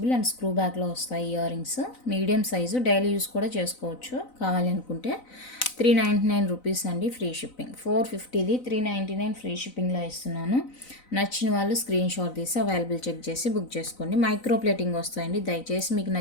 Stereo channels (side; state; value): right; late; 4.0 ms